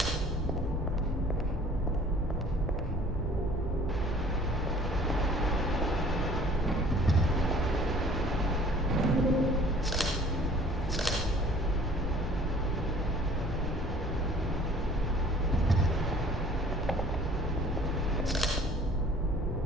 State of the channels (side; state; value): both; normal; correlation 0.51